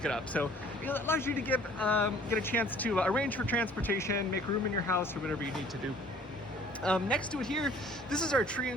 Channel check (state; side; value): normal; both; correlation 0.53